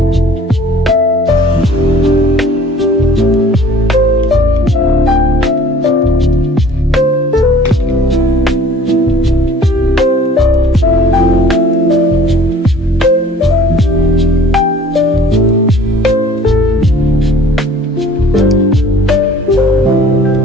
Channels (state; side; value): normal; both; correlation 0.51